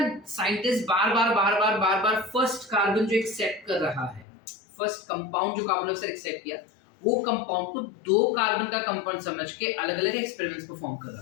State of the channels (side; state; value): right; drops out; at 4.2 s